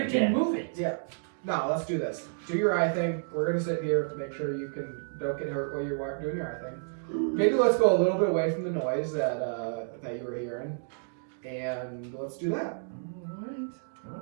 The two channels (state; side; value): silent; left; digital silence